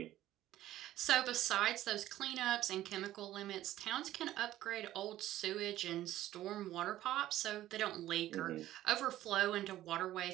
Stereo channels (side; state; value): left; quieter; 14.0 dB